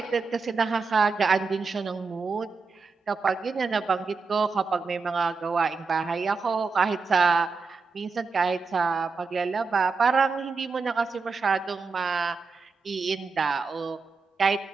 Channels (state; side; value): quieter; left; 4.6 dB